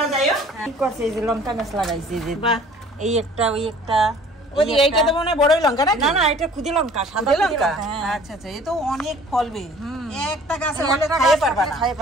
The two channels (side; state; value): both; normal; correlation 0.51